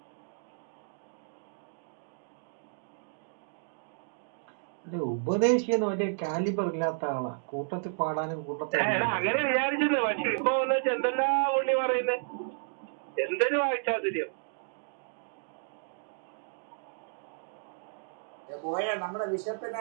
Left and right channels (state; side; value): silent; left; digital silence